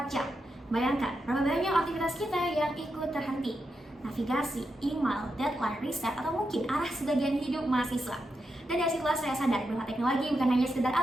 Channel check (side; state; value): both; normal; correlation 0.86